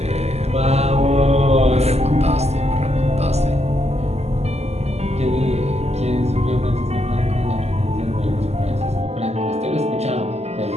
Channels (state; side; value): late; left; 0.31 ms